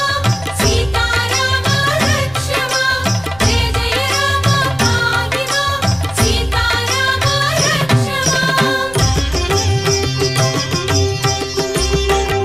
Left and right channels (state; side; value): noise; right; rumble, 19 dB below the sound